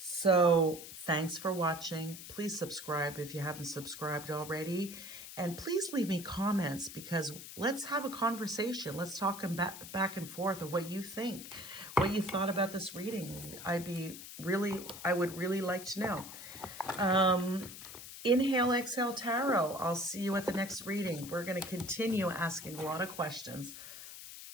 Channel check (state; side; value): noise; left; hiss, 12 dB below the sound